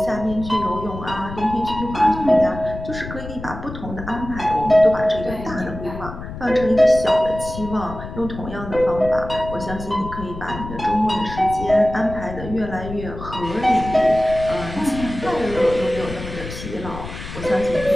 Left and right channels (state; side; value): noise; left; rumble, 10 dB below the sound